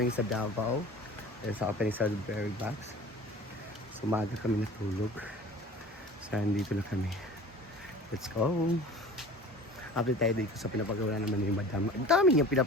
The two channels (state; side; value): normal; both; correlation 0.42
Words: sa Davao. Dahil sa opening sa Berry Box. So, maaga kami natulog. So, dito na kami. Let's go! Update tayo dito sa pinapagawa naman ni Madam. Ang dami niyang